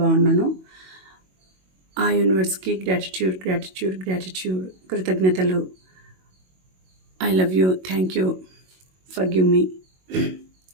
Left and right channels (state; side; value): late; left; 22 ms